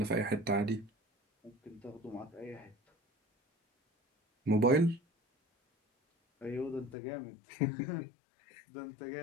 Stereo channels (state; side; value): drops out; right; at 7.0 s